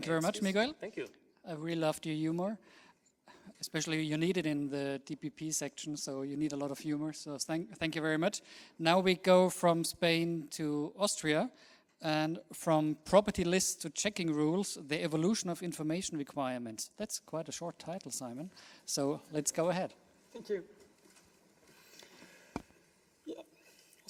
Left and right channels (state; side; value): identical; both; correlation 1.00